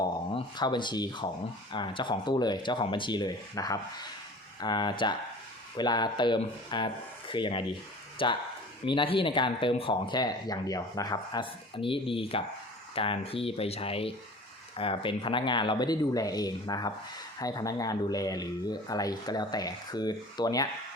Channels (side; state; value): both; normal; correlation 0.42